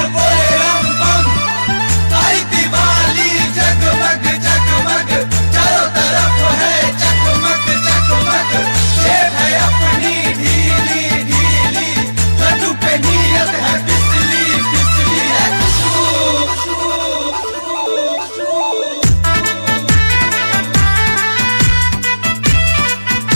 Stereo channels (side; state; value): both; inverted; correlation -1.00